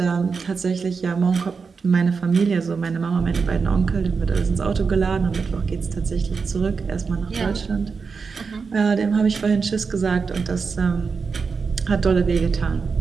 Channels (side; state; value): left; quieter; 5.2 dB